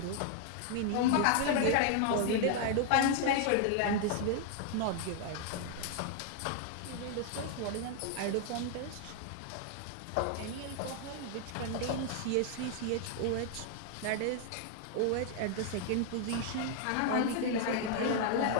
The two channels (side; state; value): both; different; correlation 0.00